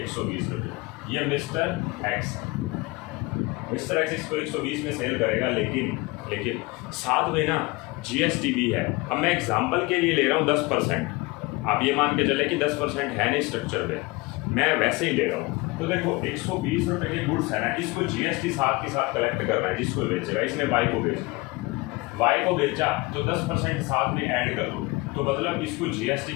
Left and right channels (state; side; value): quieter; right; 23.5 dB